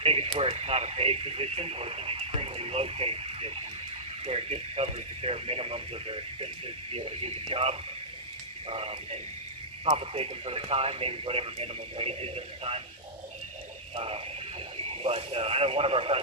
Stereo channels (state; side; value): normal; both; correlation -0.16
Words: take it where it's not a paid position or it's an extremely low paid position where it just covers the bare minimums of their expenses to be able to do the job, and compensate them for their time, maybe whatever minimum wage is at the time. But I know one of our